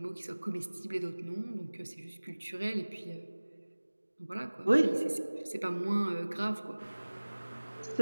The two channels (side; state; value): both; inverted; correlation -1.00